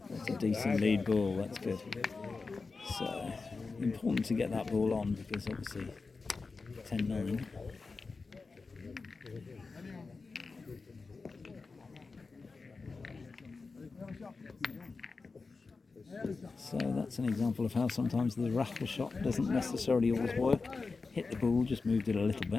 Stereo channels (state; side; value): quieter; right; 4.2 dB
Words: That's a decent lead ball, that's good. So, important to get that ball on because obviously 10-9. So that's an example of how sometimes the raffle shot doesn't necessarily always work. Hit the ball, just moved it a little